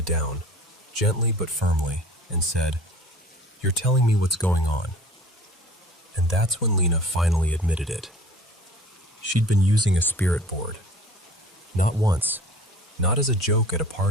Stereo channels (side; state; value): both; normal; correlation 0.46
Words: down, gently but firmly, and said, "You're telling me what's going on." And that's when Lena finally admitted it. She'd been using a spirit board. Not once, not as a joke at a